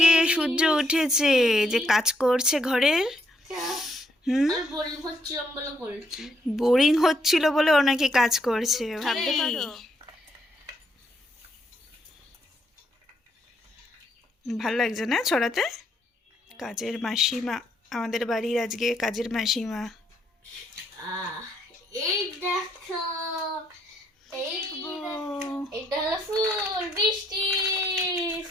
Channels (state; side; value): normal; both; correlation 0.73